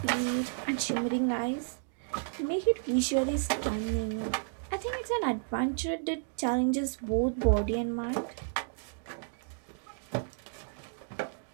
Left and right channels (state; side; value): silent; left; digital silence